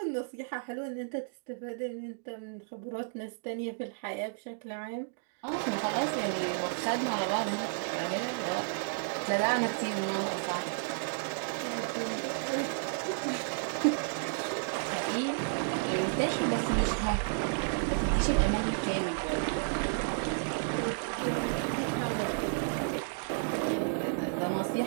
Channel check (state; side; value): silent; left; digital silence